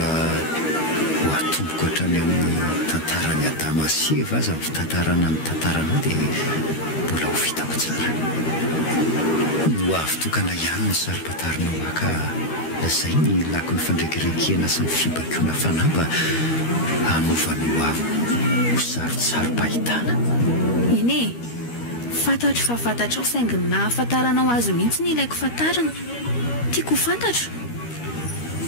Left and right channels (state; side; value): late; right; 13 ms